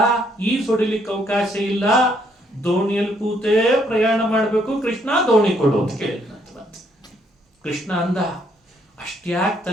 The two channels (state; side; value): normal; both; correlation 0.70